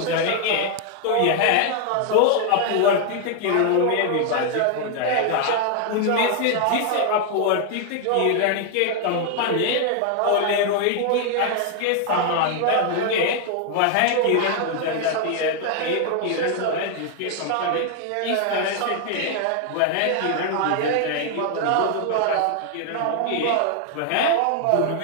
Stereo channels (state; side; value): different; both; correlation 0.00